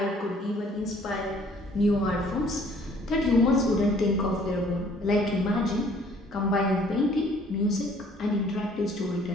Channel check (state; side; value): normal; both; correlation 0.58